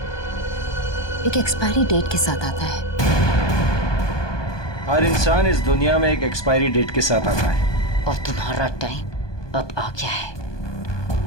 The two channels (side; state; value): right; late; 1.2 ms